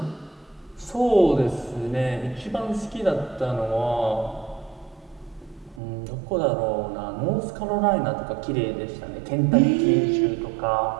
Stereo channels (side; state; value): left; drops out; at 5.8 s